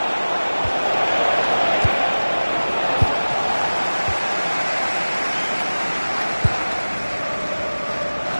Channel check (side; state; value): both; inverted; correlation -1.00